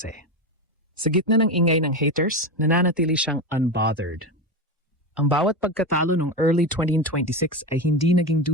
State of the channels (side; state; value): both; normal; correlation 0.18